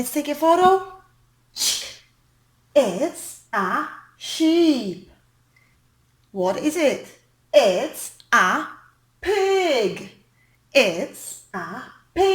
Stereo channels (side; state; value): both; identical; correlation 1.00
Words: take a photo. It's a sheep. What is it? It's a pig. It's a